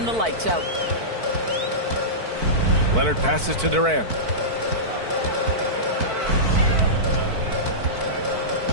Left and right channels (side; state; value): left; late; 4.5 ms